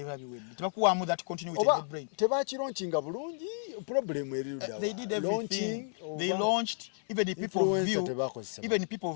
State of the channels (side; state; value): right; silent; 56 dB below the other